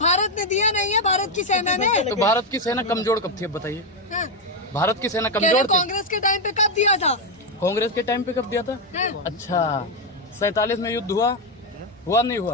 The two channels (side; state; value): both; normal; correlation 0.05